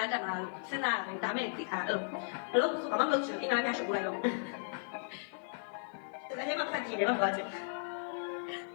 တက်မှာလို့စဉ်းစားရတယ်ဒါမဲ့သိထားဘလို့ဆိုဘာမှမလုပ်ချင်အင်္ဂါဖះရှုပ်လိုက်တော့ဒါလည်းမဖတ်ကြည့်တယ်မဟုတ်ဘူး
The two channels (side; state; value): right; silent; 54 dB below the other